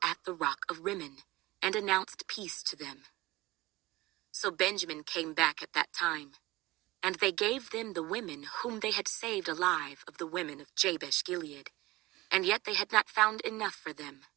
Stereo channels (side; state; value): left; quieter; 19.7 dB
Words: at the rock of Rimmon, and announced peace to them. So Benjamin came back at that time, and they gave them the women whom they had saved alive of the women of Jabesh Gilead, and yet they had not found enough for them.